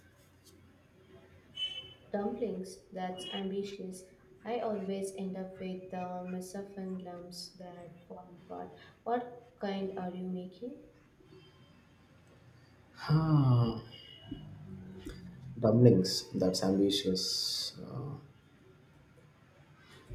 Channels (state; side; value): identical; both; correlation 1.00